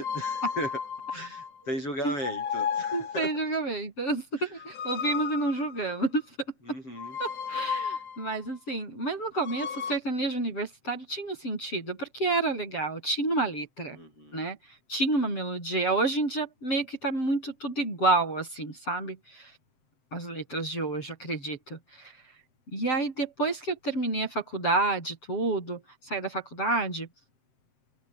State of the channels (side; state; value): right; late; 7.7 ms